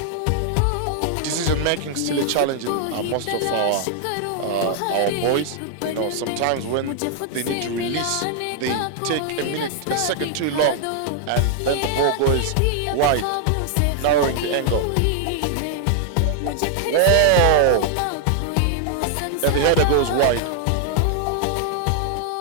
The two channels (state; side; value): different; both; correlation 0.00